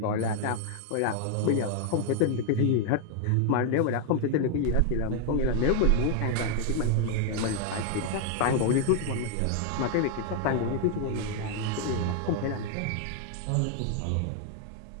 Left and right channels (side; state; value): both; different; correlation 0.00